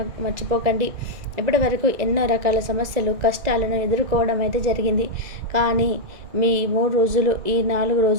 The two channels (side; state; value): left; late; 2.0 ms